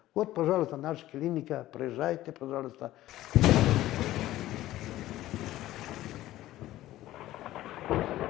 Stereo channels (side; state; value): right; quieter; 15.1 dB